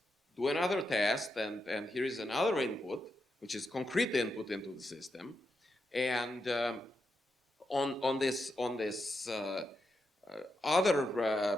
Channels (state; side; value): normal; both; correlation 0.85